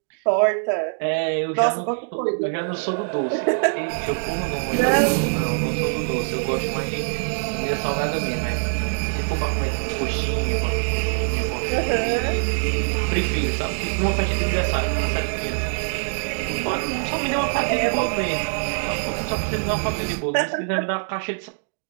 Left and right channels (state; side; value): silent; left; digital silence